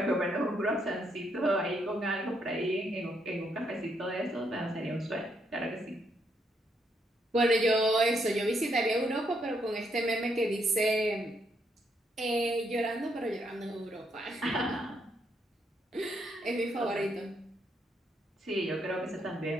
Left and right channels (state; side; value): normal; both; correlation 0.75